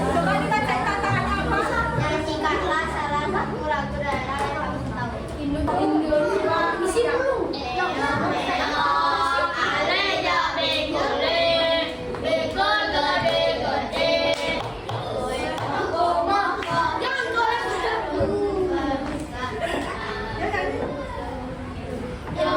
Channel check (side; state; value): both; identical; correlation 1.00